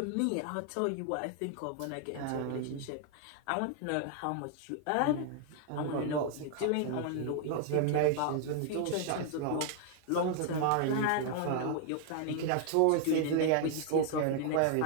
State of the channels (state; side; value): different; both; correlation 0.00